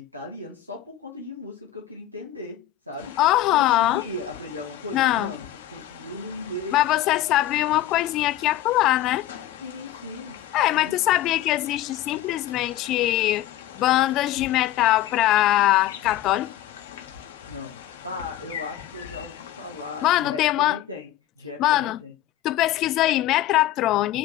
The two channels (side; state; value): right; quieter; 13.7 dB